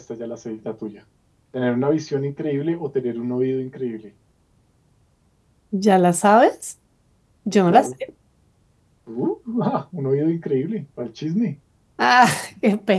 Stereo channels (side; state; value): both; identical; correlation 1.00